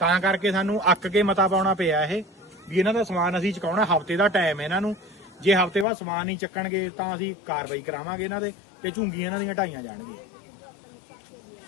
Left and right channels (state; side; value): drops out; right; at 5.9 s